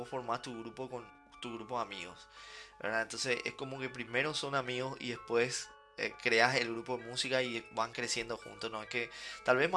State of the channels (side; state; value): both; identical; correlation 1.00